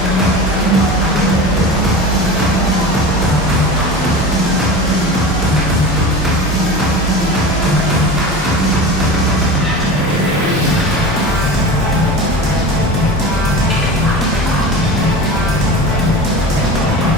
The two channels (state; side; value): normal; both; correlation 0.31